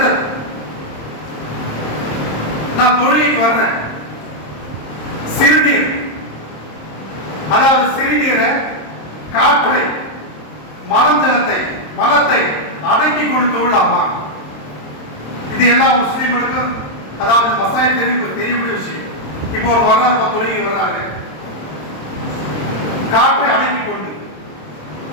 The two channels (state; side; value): late; right; 26 ms